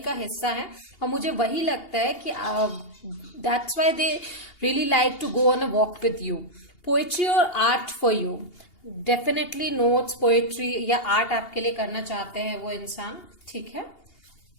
हिस्सा है और मुझे वही लगता है कि that's why they really like to go on a walk with you. Poetry और art for you, definitely notes, poetry या आर्ट आपके लिए करना चाहते हैं वो इंसान, ठीक है।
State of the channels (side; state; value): right; late; 2.8 ms